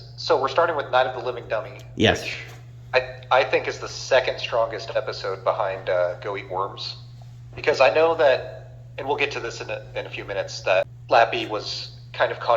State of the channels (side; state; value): both; identical; correlation 1.00